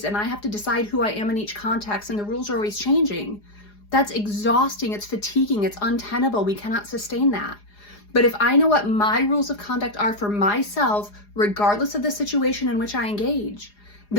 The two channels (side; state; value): right; late; 4.8 ms